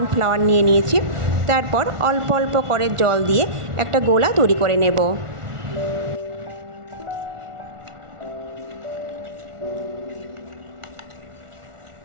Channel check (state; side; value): late; left; 1.4 ms